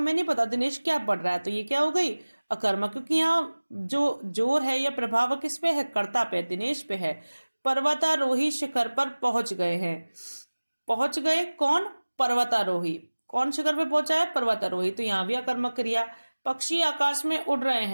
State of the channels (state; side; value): inverted; both; correlation -1.00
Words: नहीं पता दिनेश क्या पढ़ रहा है, तो ये क्या हो गई, अकर्मक, क्योंकि यहाँ जो जोर है या प्रभाव किस पे है, कर्ता पे, दिनेश पे है। पर्वतारोही शिखर पर पहुंच गए हैं, पहुंच गए कौन, पर्वतारोही, कौन शिखर पे पहुंचा है, पर्वतारोही, तो यहाँ भी अकर्मक क्रिया। पक्षी आकाश में उड़ रहे